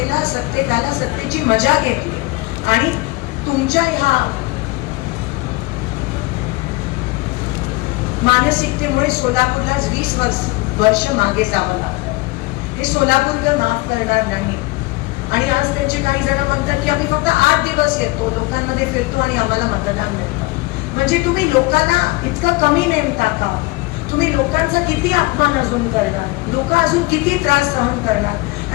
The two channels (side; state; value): right; quieter; 23.1 dB